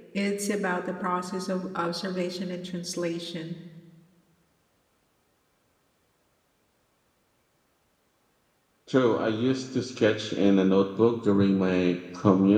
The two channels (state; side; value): identical; both; correlation 1.00